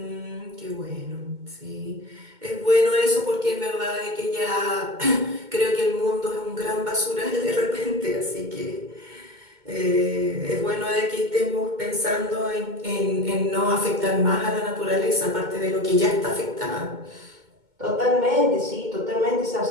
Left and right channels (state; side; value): late; left; 2.2 ms